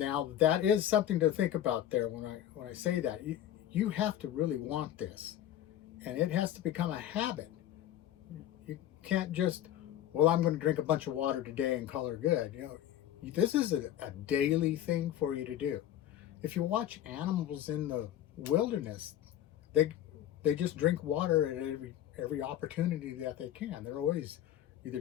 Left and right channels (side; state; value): right; quieter; 11.5 dB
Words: that is something to think about there when I say that. You have to really want this, and it has to become a habit. You can't just, well, I'm going to drink a bunch of water today and call it good. This is a daily thing for you to do. If you watch animals in the wilderness, they just drink water at every opportunity that they can. They're always either